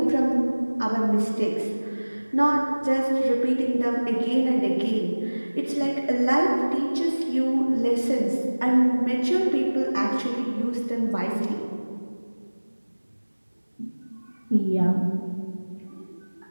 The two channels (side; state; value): both; inverted; correlation -1.00